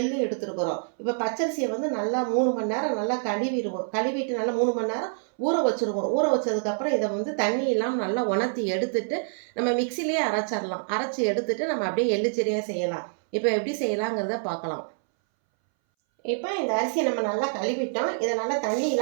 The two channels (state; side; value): silent; left; 61 dB below the other